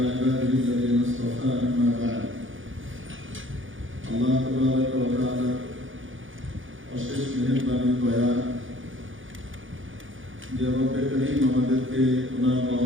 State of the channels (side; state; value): left; late; 0.57 ms